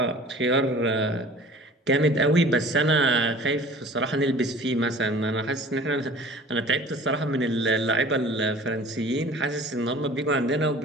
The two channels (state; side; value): normal; both; correlation 0.46